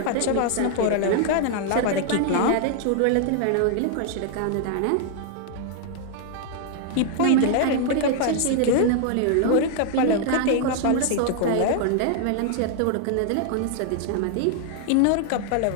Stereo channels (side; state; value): both; different; correlation 0.00